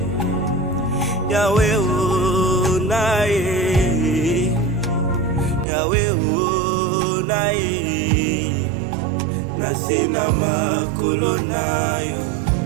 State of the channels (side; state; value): left; drops out; at 5.7 s